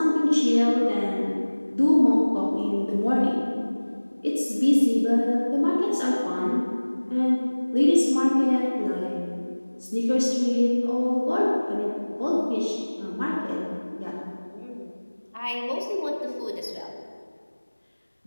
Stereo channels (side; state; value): both; inverted; correlation -1.00